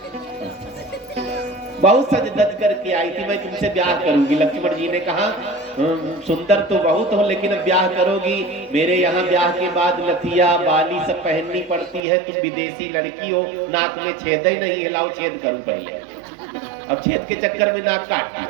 बहुत सज धज करके आई थी, मैं तुमसे ब्याह करूंगी। लक्ष्मण जी ने कहा सुंदर तो बहुत हो लेकिन अब ब्याह करोगी, मेरे यहाँ ब्याह के बाद लथिया बाली सब पहननी पड़ती है, तुम विदेशी लड़की हो, नाक में छेद ही नहीं है, लाओ छेद करूं पहले। अब छेद के चक्कर में नाक काट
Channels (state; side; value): drops out; left; at 12.0 s